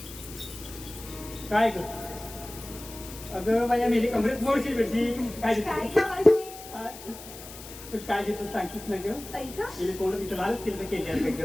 काय ग? अगं बाया मेरी कमरेत मोडशील बेडशी. काय काय घेतलं? ग मावशी? तू काय घेतलं सांगतीस ना ग? ऐका गेले कोण तिचं लालच केलं केली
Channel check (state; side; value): noise; left; hiss, 15 dB below the sound